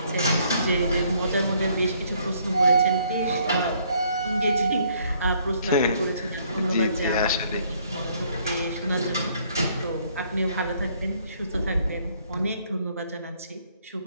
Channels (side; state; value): both; inverted; correlation -0.66